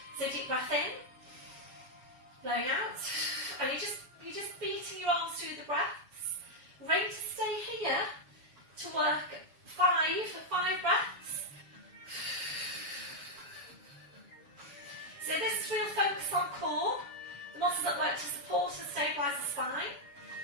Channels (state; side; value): late; left; 7.1 ms